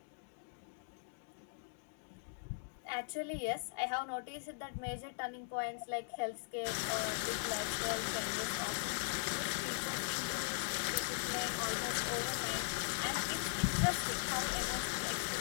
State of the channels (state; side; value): silent; right; digital silence